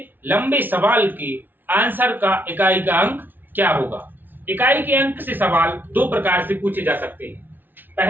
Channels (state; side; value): late; left; 0.091 ms